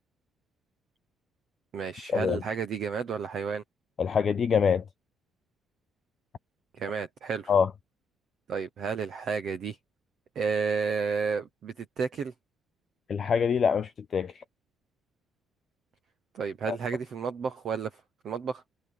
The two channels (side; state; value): both; normal; correlation 0.75